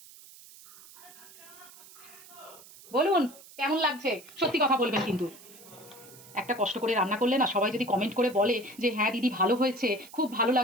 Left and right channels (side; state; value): right; noise; hiss, 20 dB below the sound